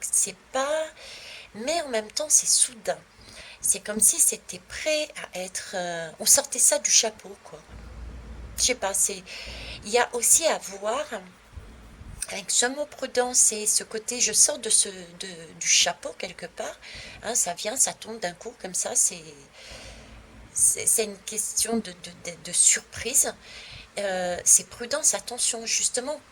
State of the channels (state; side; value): identical; both; correlation 1.00